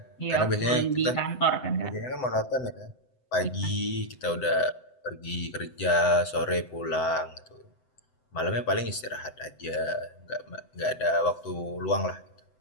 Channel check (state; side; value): late; right; 7.9 ms